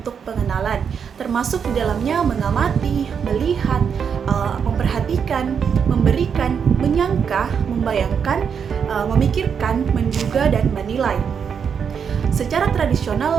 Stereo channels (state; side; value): quieter; left; 7.0 dB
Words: pengenalan, termasuk di dalamnya mengamati, melihat, memperhatikan, memberikan, menyangka, membayangkan, memikirkan, menduga, dan menilai. Secara